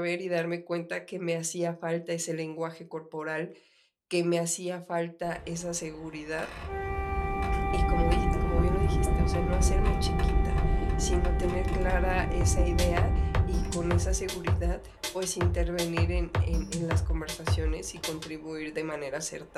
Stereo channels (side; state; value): both; identical; correlation 1.00